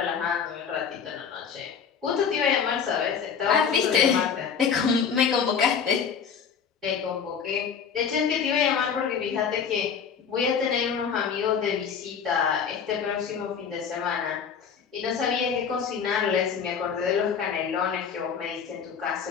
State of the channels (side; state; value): right; quieter; 6.9 dB